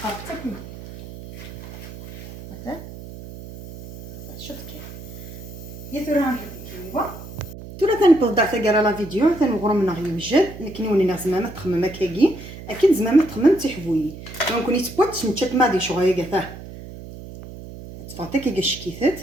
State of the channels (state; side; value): noise; right; hum, 13 dB below the sound